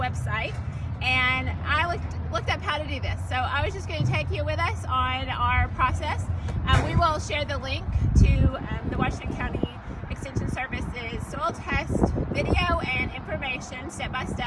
and I looked up how to do this. So I was just going to take you with us on our process. We will share the link to the Washington County Extension Service's soil test video and information step by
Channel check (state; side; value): identical; both; correlation 1.00